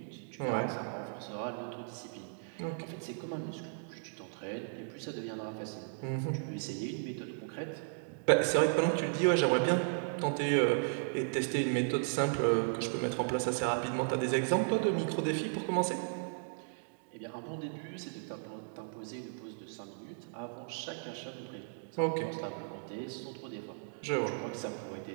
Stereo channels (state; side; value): silent; left; digital silence